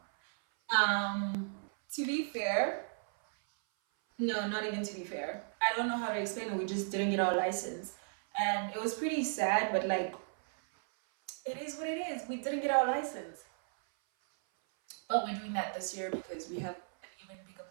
To be fair, no, not even to be fair. I don't know how to explain it. We just didn't get our license, and it was pretty sad. But like, it is what it is. We didn't get our license. But we're doing that this year because we have an even bigger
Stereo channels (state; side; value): silent; left; 54 dB below the other